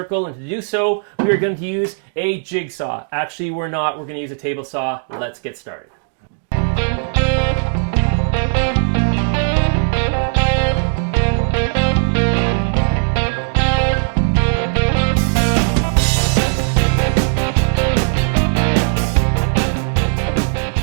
and to do so, we are going to use a jigsaw. Actually, we're not. We're going to use a table saw. Let's get started.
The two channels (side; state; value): left; silent; digital silence